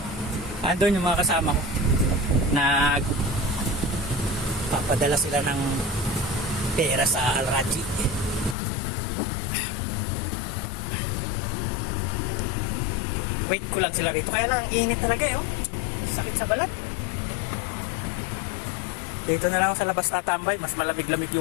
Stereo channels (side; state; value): right; drops out; at 8.6 s